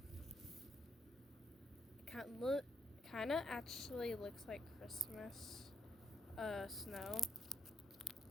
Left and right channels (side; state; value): both; normal; correlation 0.76